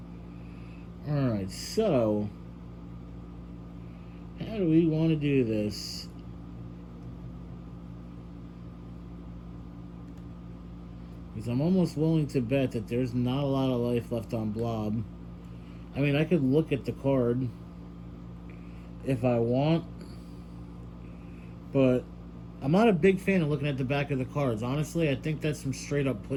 Alright, so how do we want to do this? Because I'm almost willing to bet that there's not a lot of life left on Blob. I mean, I could look at the card if I want, but I'm not a big fan of looking at the back of the cards. Honestly, I think that's some straight up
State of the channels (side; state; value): both; identical; correlation 1.00